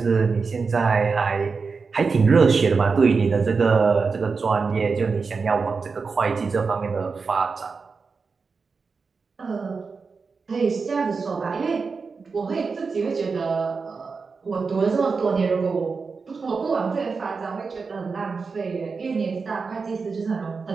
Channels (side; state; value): left; quieter; 4.8 dB